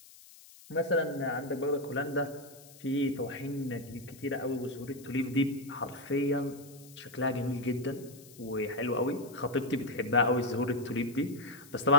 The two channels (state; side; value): noise; left; hiss, 21 dB below the sound